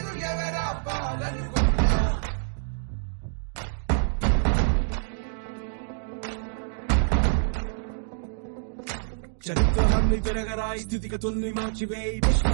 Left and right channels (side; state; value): left; silent; digital silence